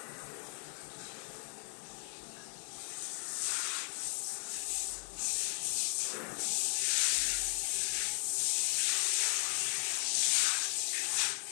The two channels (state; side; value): silent; right; 54 dB below the other